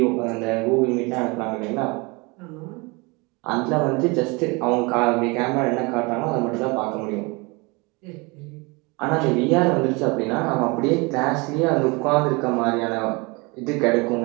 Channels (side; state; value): left; quieter; 27.3 dB